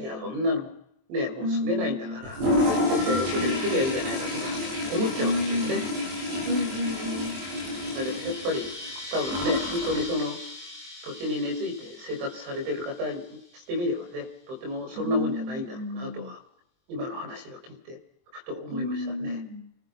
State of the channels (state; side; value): late; left; 23 ms